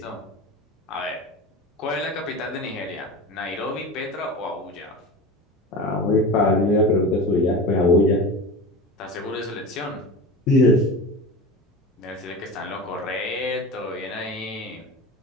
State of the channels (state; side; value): normal; both; correlation 0.31